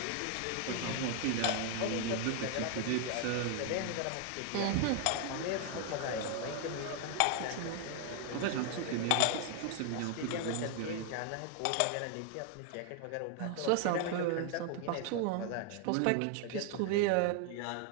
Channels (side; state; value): both; different; correlation 0.00